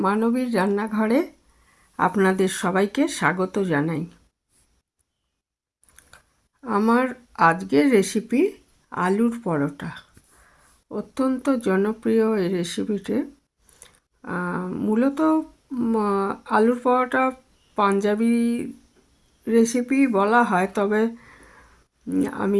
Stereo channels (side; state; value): both; identical; correlation 1.00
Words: রান্নাঘরে আপনাদের সবাইকে স্বাগত জানাই। আমার আজকের রেসিপি আলুর পরোটা। অত্যন্ত জনপ্রিয় এই রেসিপিটি। মূলত আলুর পরোটা পাঞ্জাবি রেসিপি বলা হয়, তবে